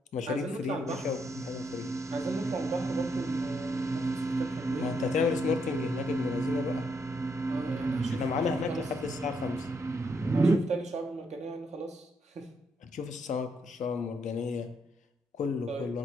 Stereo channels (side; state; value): both; normal; correlation 0.76